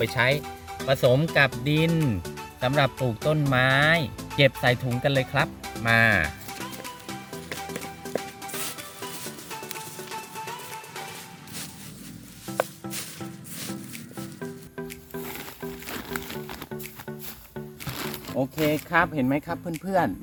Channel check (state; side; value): identical; both; correlation 1.00